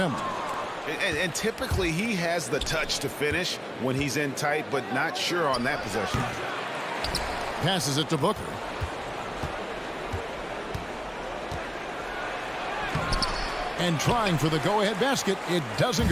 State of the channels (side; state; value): both; identical; correlation 1.00